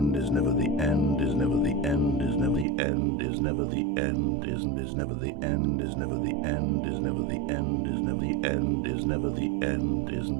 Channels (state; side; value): drops out; left; at 2.7 s